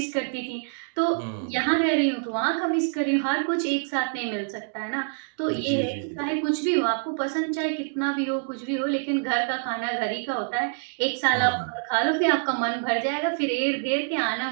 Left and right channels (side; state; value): left; silent; digital silence